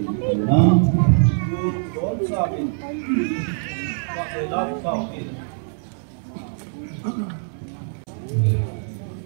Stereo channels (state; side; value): silent; left; 63 dB below the other